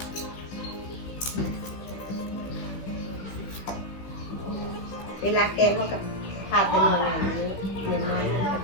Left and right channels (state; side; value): late; right; 16 ms